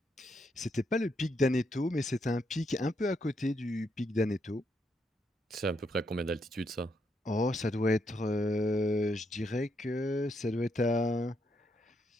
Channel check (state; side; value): normal; both; correlation 0.78